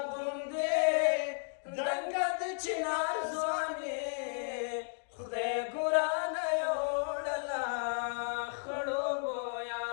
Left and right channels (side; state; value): right; silent; digital silence